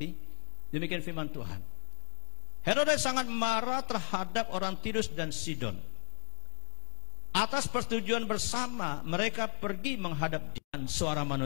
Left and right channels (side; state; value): right; silent; digital silence